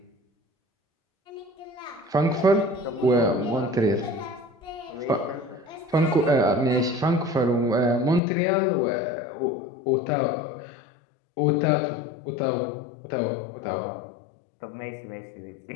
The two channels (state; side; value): drops out; right; at 8.2 s